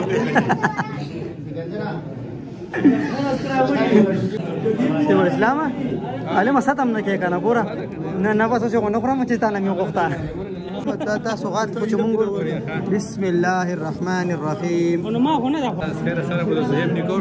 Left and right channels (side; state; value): both; identical; correlation 1.00